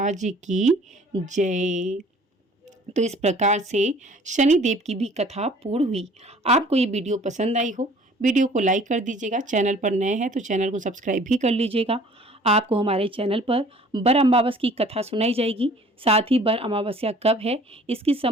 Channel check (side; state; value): both; normal; correlation 0.52